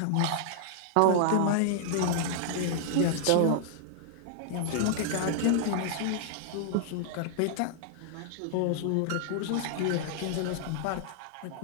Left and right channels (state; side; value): different; both; correlation -0.01